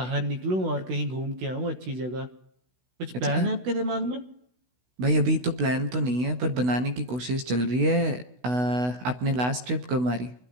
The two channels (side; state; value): left; late; 16 ms